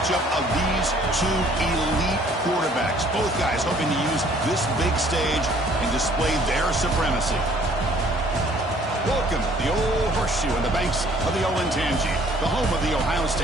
of these two elite quarterbacks. Both guys hoping to use this big stage and display their supremacy. Welcome to the old horseshoe on the banks of the Olentangy, the home of the Ohio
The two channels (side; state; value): both; normal; correlation 0.58